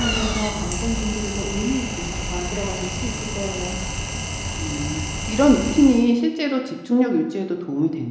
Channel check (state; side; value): identical; both; correlation 1.00